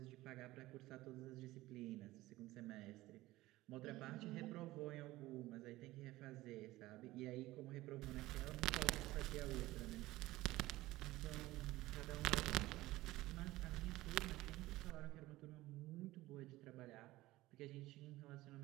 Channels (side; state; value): left; quieter; 17.8 dB